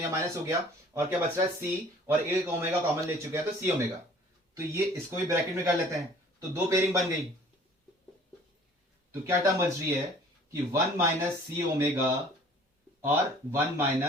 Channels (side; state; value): both; normal; correlation 0.51